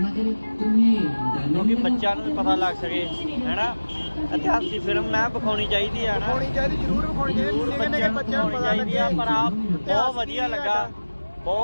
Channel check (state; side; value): inverted; both; correlation -1.00